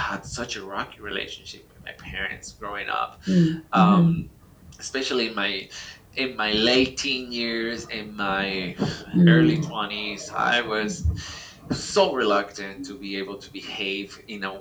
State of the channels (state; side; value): identical; both; correlation 1.00